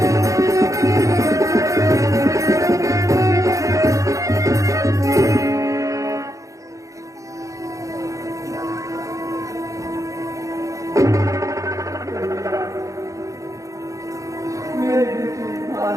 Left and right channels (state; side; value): late; left; 0.16 ms